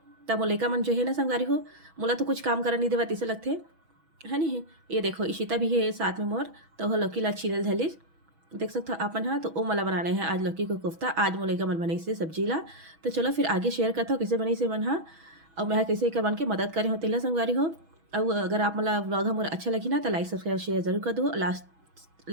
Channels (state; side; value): late; left; 6.2 ms